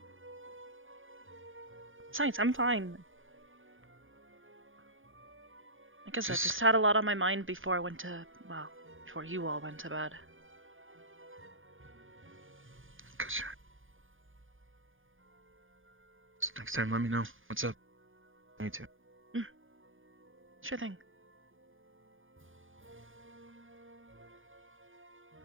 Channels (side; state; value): left; late; 0.58 ms